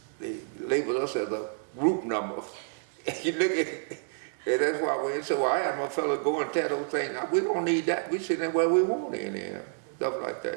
they labeled us as a group number. You look at it, and that's why we so I had my fellow go and tell those things. We don't need that. We sit in where we want in here, stuff like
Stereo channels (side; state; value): left; silent; 58 dB below the other